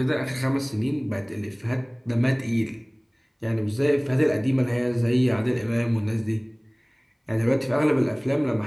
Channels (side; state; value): both; identical; correlation 1.00